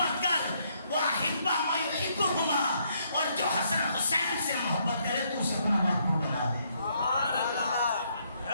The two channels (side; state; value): both; inverted; correlation -0.71